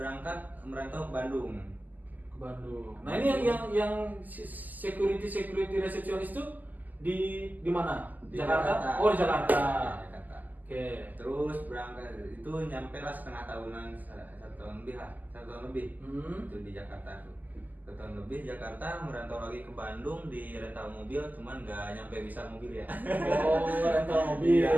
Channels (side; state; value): left; late; 0.083 ms